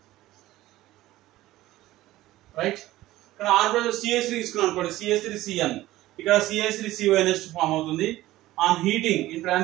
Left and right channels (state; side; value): quieter; left; 16.2 dB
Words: Right? ఇక్కడ R బదులు CH3 తీసుకున్నాం అనుకోండి CH3CN. ఇక్కడ CH3CONH2 ఫామ్ అవుతుంది. On heating in